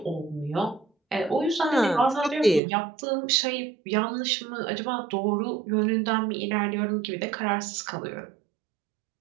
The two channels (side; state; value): left; drops out; at 2.6 s